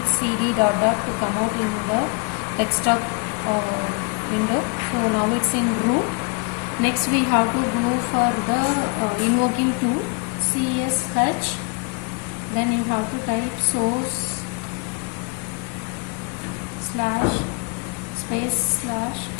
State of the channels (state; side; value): quieter; right; 32.0 dB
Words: CD dot to come out in the desktop window. So now it's in root. Next we have to go for the invoking tool CSH. Then you have to type source slash space slash